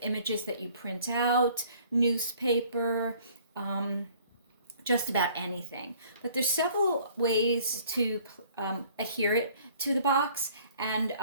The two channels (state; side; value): inverted; both; correlation -0.56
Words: images that you print out, newspaper, just about anything. But there's several ways to adhere it to the box, and